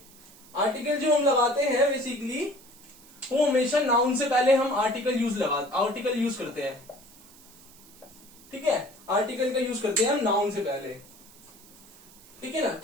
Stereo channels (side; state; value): right; noise; hiss, 23 dB below the sound